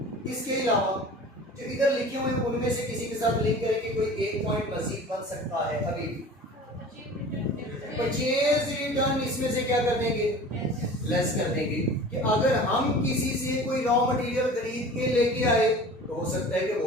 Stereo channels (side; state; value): both; normal; correlation 0.40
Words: इसके अलावा जो इधर लिखे हुए उनमें से किसी के साथ लिंक करके कोई एक पॉइंट मजीद बन सकता है। अभी परचेज रिटर्न इसमें से क्या कर देंगे, लेस कर देंगे। कि अगर हम किसी से कोई रॉ मटेरियल खरीद के लेके आए तो हो सकता है कि